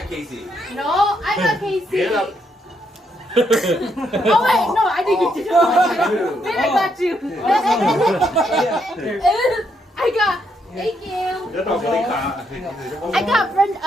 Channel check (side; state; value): both; normal; correlation 0.76